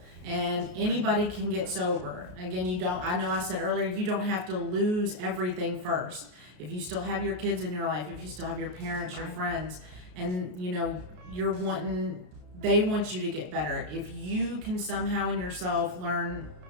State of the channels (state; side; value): late; left; 33 ms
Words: And anybody can get sober. Again, I know I said earlier, you don't have to lose everything first. If you still have your kids in your life, if you still have your parents, your friends, and they want you to get better. If you can somehow in yourself learn